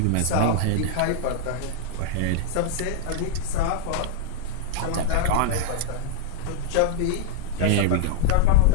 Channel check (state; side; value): different; both; correlation 0.00